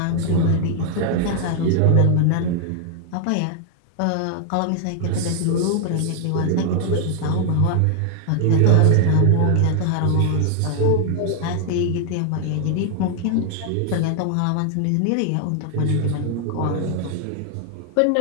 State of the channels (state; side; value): different; both; correlation 0.00